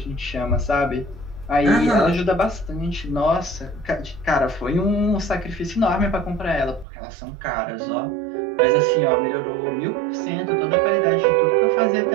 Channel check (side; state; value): left; drops out; at 6.9 s